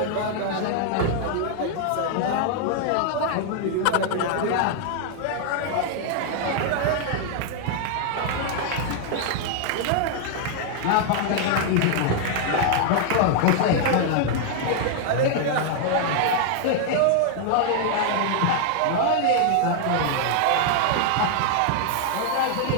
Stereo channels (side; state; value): both; different; correlation 0.00